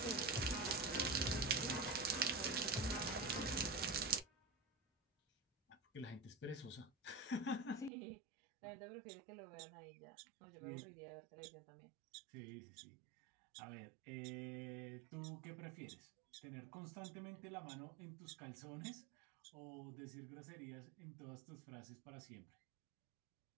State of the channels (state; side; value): drops out; left; at 7.9 s